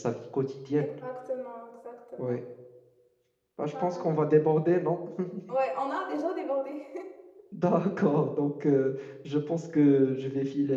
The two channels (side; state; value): both; identical; correlation 1.00